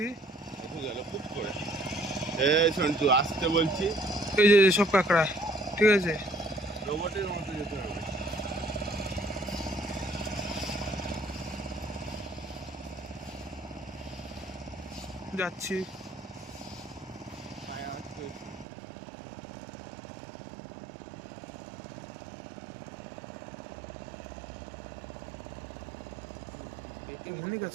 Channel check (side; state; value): left; drops out; at 18.7 s